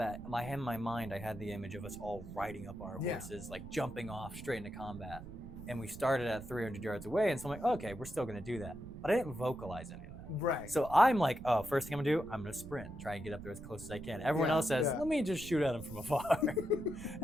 in my mind, I had the image of us all riding up our horses, like jumping off straight into combat. And we started at 300 yards away, and so I'm like, okay, we're still gonna do that. But I didn't vocalize any of that. Right. So I'm like, oh, first thing I'm gonna do, I'm gonna sprint, try and get up there as close as I can. Everyone else says, let me just shoot at him from afar. And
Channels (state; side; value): noise; right; rumble, 13 dB below the sound